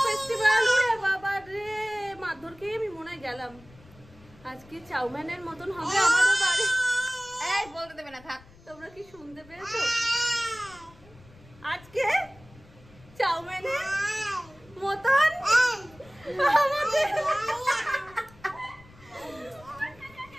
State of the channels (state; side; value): noise; left; rumble, 24 dB below the sound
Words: ফেস্টিভ্যাল ওরে বাবা রে মাধুরকে আমি মনে হয় গেলাম আজকে চাউমিনের মতন হবে আমাদের বাড়ি এই বলতে দেবে না থাক তোমরা কি শুনতে পেয়েছো আজকে চাউমিনের মতন আমাদের